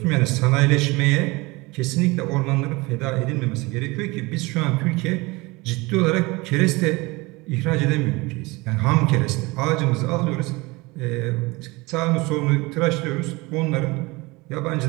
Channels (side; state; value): left; quieter; 23.7 dB